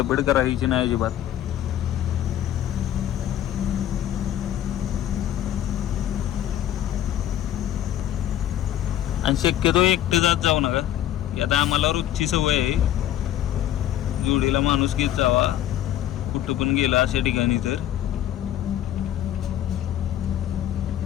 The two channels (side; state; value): right; quieter; 11.8 dB